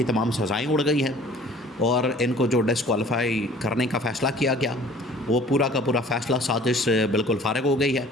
तमाम सज़ाएँ उड़ गई हैं और इनको जो डिस्क्वालीफाई करने का फ़ैसला किया गया, वो पूरा का पूरा फ़ैसला साजिश बिल्कुल फ़ारिग हो गई है,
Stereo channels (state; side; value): normal; both; correlation 0.50